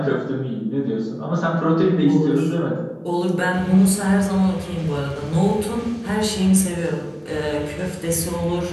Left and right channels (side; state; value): both; identical; correlation 1.00